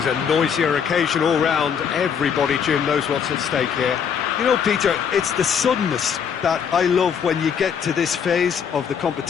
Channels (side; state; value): right; quieter; 7.3 dB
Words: a noisier occasion all round. Everybody, Jim, knows what's at stake here. You know, Peter, it's the suddenness that I love when you get to this phase of the